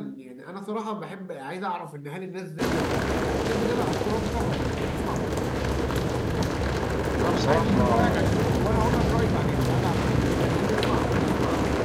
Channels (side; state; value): both; identical; correlation 1.00